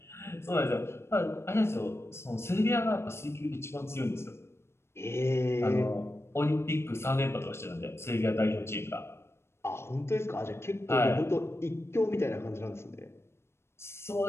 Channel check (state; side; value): late; right; 0.12 ms